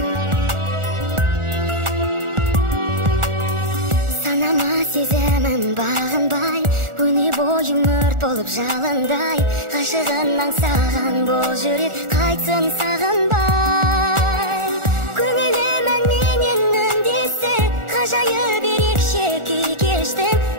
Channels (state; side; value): late; left; 1.4 ms